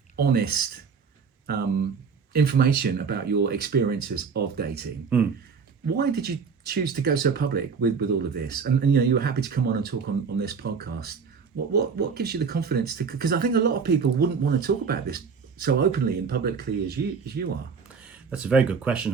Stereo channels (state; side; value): quieter; left; 5.7 dB